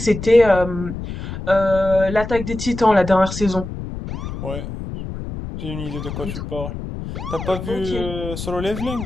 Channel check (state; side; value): noise; left; rumble, 8 dB below the sound